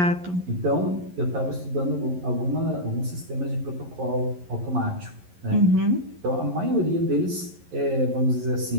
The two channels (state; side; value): late; left; 11 ms